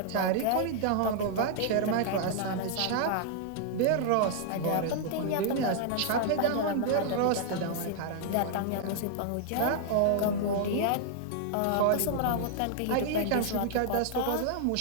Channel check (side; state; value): both; different; correlation -0.01